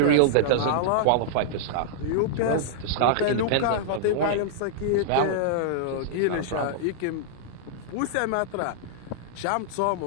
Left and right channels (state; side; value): different; both; correlation -0.01